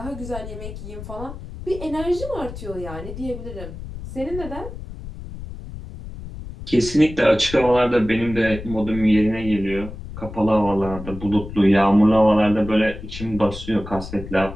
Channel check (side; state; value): left; noise; rumble, 11 dB below the sound